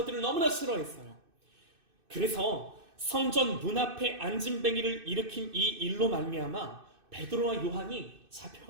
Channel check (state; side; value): late; left; 2.6 ms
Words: 너무나 싫어했어요. 그래서 성전 문 앞에 앉은뱅이를 일으킨 이 일로 말미암아 베드로와 요한이